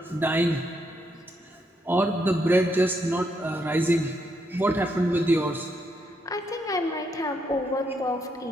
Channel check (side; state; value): both; normal; correlation 0.77